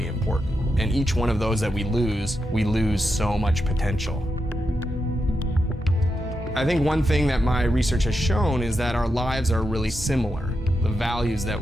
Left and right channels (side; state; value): both; normal; correlation 0.86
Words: important, and each one of those that we lose so much potential. I think one thing that my research has shown is that our lives are really similar. The values that